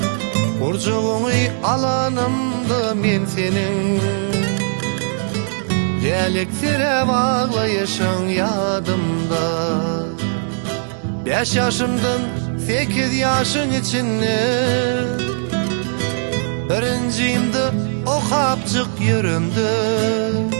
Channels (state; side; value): silent; left; digital silence